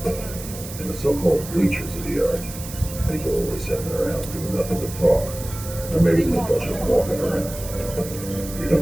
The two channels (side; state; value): right; noise; hiss, 12 dB below the sound